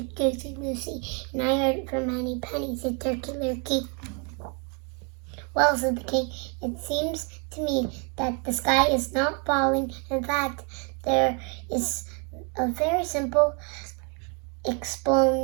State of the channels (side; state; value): left; quieter; 35.7 dB